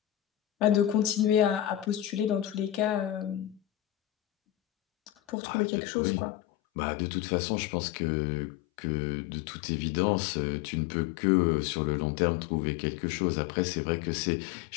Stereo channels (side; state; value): right; drops out; at 5.4 s